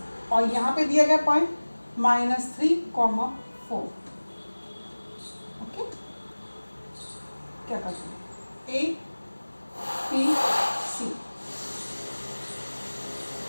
और यहाँ पे दिया गया पॉइंट -3, 4। ओके, क्या करते हैं, A, B, C,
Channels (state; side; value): inverted; both; correlation -1.00